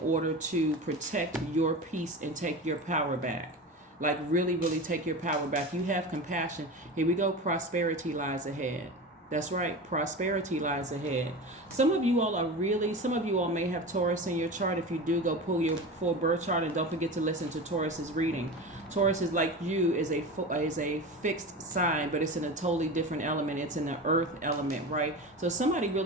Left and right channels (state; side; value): normal; both; correlation 0.28